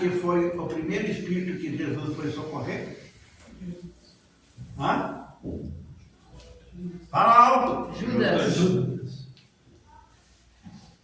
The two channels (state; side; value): identical; both; correlation 1.00